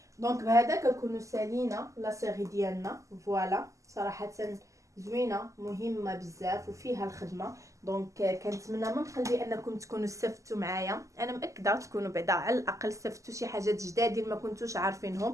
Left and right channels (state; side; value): late; left; 0.16 ms